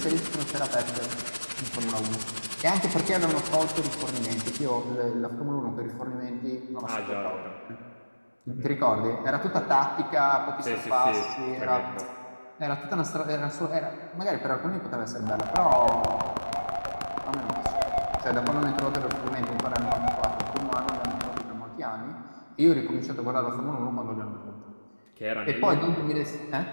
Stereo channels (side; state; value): both; inverted; correlation -1.00